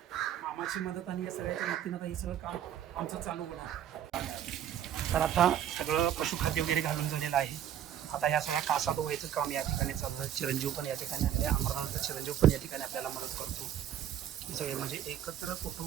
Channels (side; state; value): left; quieter; 10.3 dB